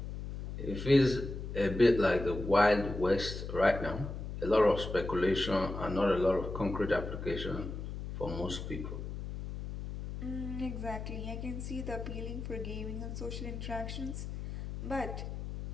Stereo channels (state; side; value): noise; left; hum, 7 dB below the sound